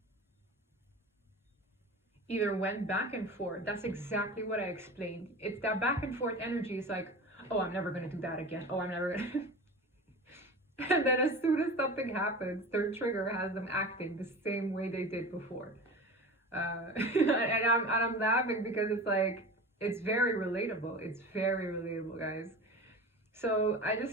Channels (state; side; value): normal; both; correlation 0.33